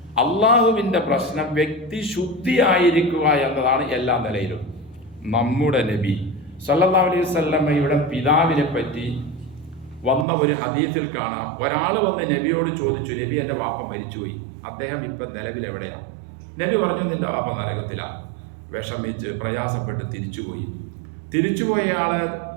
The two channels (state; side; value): drops out; left; at 10.2 s